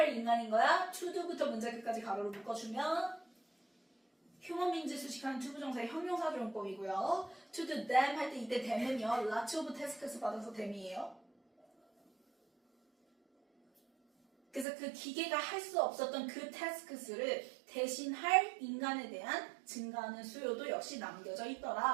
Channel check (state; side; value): drops out; left; at 14.7 s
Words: 인간인 거야? to do부터 문제 끝까지 가로로 묶어주면 human beings 수식하는 투부정사의 형용사조용법이고요. to do them 할 때 이때 them은요. lots of tasks 받아서 them이에요. 그래서 그 기계가 할 수 없었던 그 tasks를 대신할 인간에 대한 증가하는 수요도 역시 남겨져